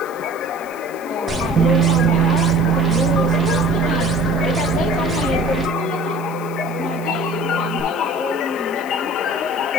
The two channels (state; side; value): noise; left; hiss, 21 dB below the sound